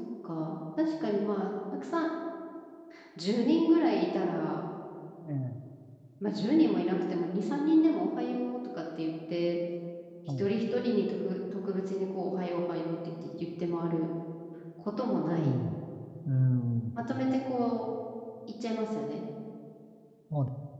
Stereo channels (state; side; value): identical; both; correlation 1.00